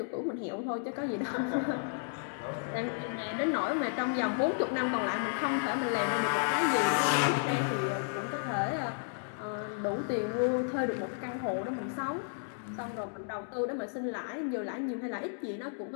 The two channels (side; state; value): right; silent; digital silence